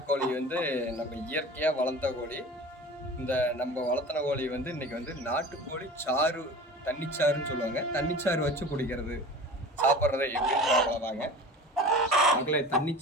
வந்து நம்ம இயற்கையாக வளர்த்த கோழி. இந்த நம்ம வளர்த்தின கோழி வந்து இன்றைக்கி வந்து நாட்டுக்கோழி சாறு, தண்ணிச்சாறுன்னு சொல்லுவாங்க. தண்ணிச்சாறு வச்சு குடிக்கிறது, சாப்பிட்றதை எப்படின்னு பார்க்கலாங்க. மக்களே,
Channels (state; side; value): normal; both; correlation 0.37